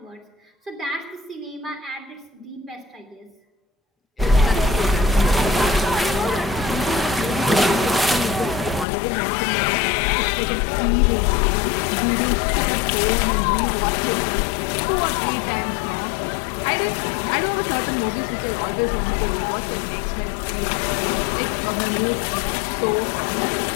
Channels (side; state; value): right; drops out; at 8.8 s